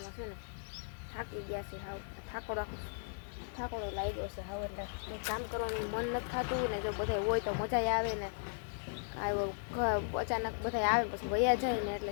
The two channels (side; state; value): right; silent; digital silence